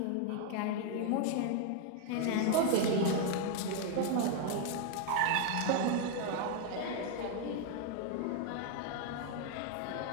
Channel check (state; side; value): different; both; correlation 0.00